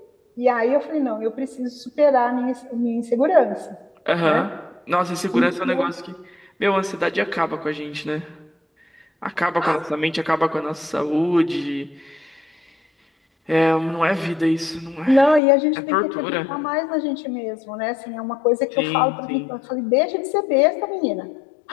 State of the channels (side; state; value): right; drops out; at 15.4 s